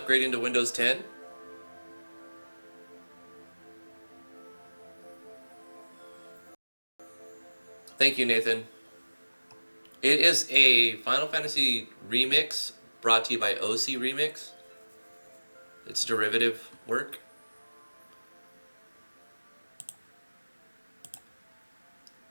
to Windows 10? Thank you, Nathan. It is a Final Fantasy remix brought to you by OC Remix. It's derivative work.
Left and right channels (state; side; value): inverted; both; correlation -1.00